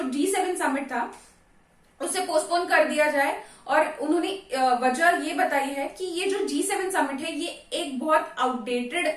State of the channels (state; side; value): identical; both; correlation 1.00